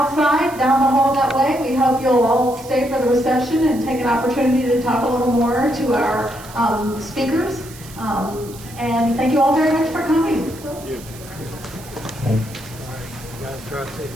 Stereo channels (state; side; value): noise; right; hiss, 18 dB below the sound